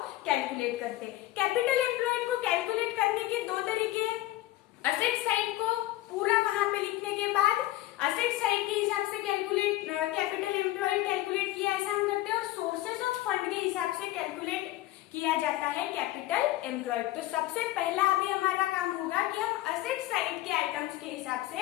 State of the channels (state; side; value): quieter; right; 16.1 dB